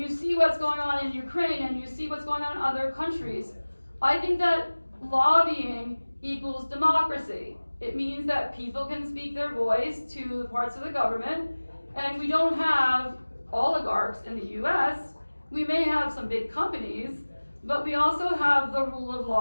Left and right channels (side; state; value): both; inverted; correlation -1.00